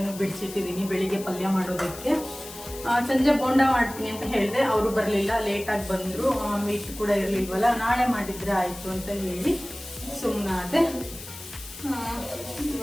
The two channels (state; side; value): noise; left; hiss, 14 dB below the sound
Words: ಬಿಡಿಸಿಟ್ಟಿದ್ದೀನಿ ಬೆಳಿಗ್ಗೆ ಪಲ್ಯ ಮಾಡೋದಕ್ಕೆ. ಸಂಜೆ ಬೋಂಡ ಮಾಡ್ತೀನಿ ಅಂತ ಹೇಳಿದೆ, ಅವರು ಬರಲಿಲ್ಲ, ಲೇಟಾಗಿ ಬಂದರು. ಮೀಟ್ ಕೂಡ ಇರಲಿಲ್ವಲ್ಲ, ನಾಳೆ ಮಾಡಿದ್ರೆ ಆಯಿತು ಅಂತ ಹೇಳಿ ಸುಮ್ಮನಾದೆ.